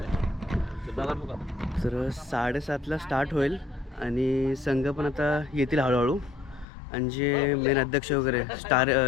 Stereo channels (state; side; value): drops out; right; at 6.7 s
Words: तर 7:30ला स्टार्ट होईल आणि संघ पण आता येतील हळूहळू. आणि जे मेन अध्यक्ष वगैरे स्टार